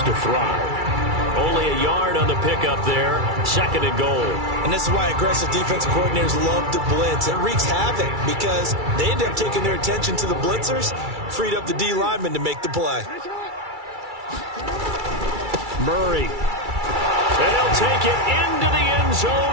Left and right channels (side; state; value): left; late; 2.3 ms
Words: to thrive. Only a yard on the pickup there. 2nd and goal. And this is why aggressive defensive coordinators love to blitz. It wreaks havoc because they end up taking their attention to the blitzers, freed up the D lineman to make the play. Murray. And he'll take it into the end